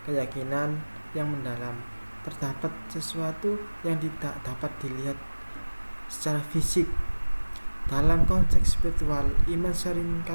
keyakinan yang mendalam terdapat sesuatu yang tidak dapat dilihat secara fisik. Dalam konteks spiritual, iman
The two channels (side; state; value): both; inverted; correlation -1.00